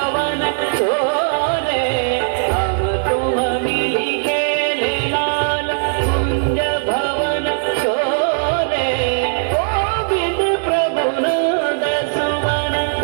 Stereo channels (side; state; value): left; silent; digital silence